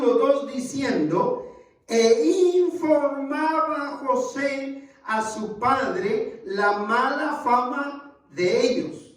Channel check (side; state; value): both; identical; correlation 1.00